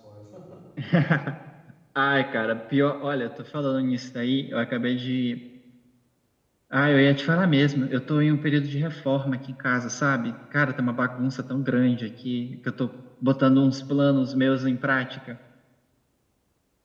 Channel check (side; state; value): both; identical; correlation 1.00